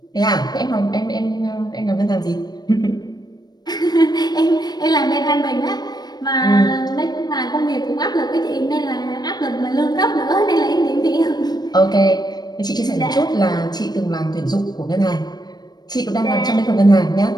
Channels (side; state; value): right; late; 0.19 ms